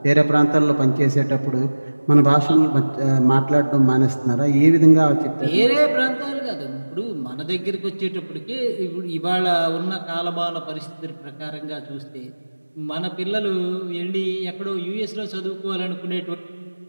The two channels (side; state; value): both; inverted; correlation -1.00